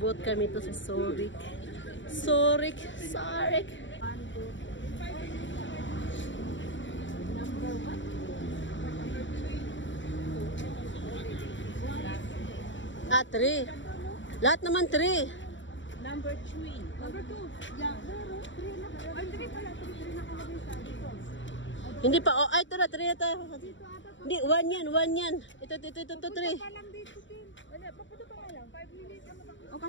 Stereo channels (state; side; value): late; right; 0.55 ms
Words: kami to sa Zurich. Zurich. Ah, 3. Lahat naman 3. Number 3. Number 2. Yeah, 3 na. Ay, 3 pala. 3 nakalagay sa dito. Hindi pa. Oh, ay, ito na. 3 na tayo. Hindi, 1 yan. 1 yan. Ito, 3. Pa lang dito, Tim. Wala, papunta pa lang. 5 minutes. O,